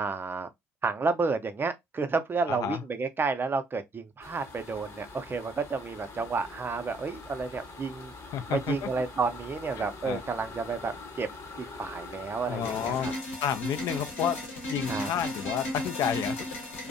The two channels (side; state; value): both; normal; correlation 0.59